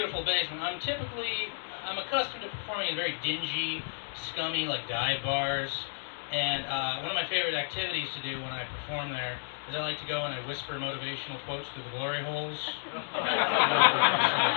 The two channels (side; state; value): right; silent; 57 dB below the other